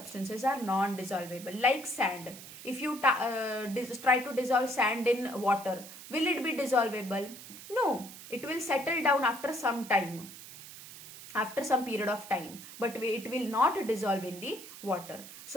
are non-dissolvable, like sand. If you try to dissolve sand in water, will it be dissolvable? No, it will settle down after some time, after some period of time, but it will not dissolve in the water.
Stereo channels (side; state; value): right; noise; hiss, 15 dB below the sound